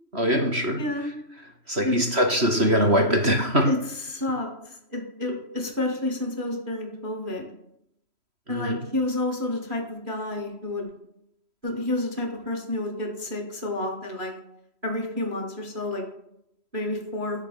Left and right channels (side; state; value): left; late; 3.1 ms